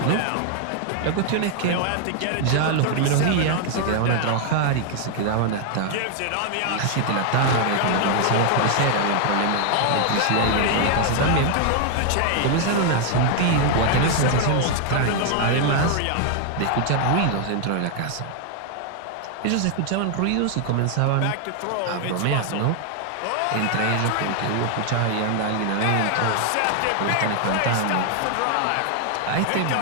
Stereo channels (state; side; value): different; both; correlation 0.00